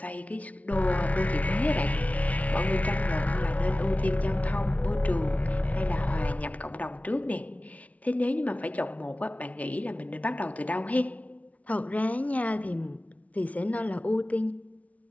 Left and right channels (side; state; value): right; late; 0.068 ms